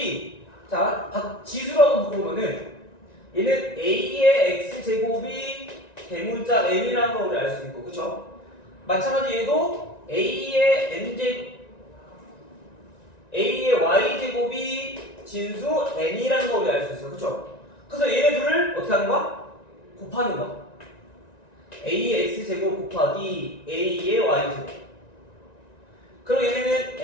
자 지수라고 바꾸면은 얘는 a의 x제곱이 대문자 m이라는 걸 우리 알 수 있고 그쵸? 마찬가지 얘도 a의 a의 y제곱이 진수 n이라는 걸 우리 알 수 있어 그쵸? 그래서 얘네 둘을 어떻게 하는 거야? 곱하는 거야. a의 x제곱 곱하기 a의 y제곱. 그럼 얘네는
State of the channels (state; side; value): late; right; 1.9 ms